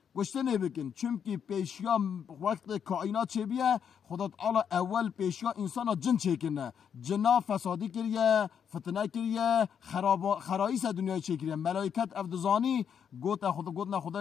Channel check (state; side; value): quieter; right; 7.8 dB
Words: گشتنه بکن، چونکی پیشیا وقت کائنات چه بیه خدا تعالی اول پیشیا انسان جن چکنه، جنا فسادی کریه، فتنه کریه، خراییس دنیای چه کریه. ملائکت افدزانی گوتنا